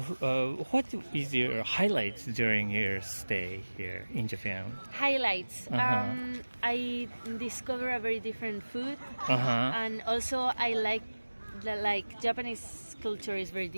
is your highlights during your stay here in Japan? Highlights. I discovered a very different food, and also I like Japanese culture is very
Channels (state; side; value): inverted; both; correlation -1.00